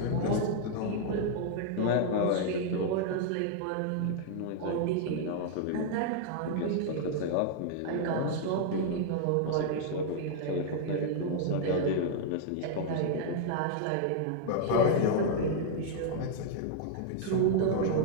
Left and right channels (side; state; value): both; different; correlation -0.01